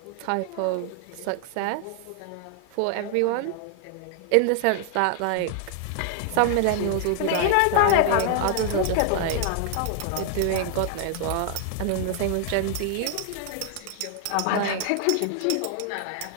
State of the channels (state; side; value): different; both; correlation 0.00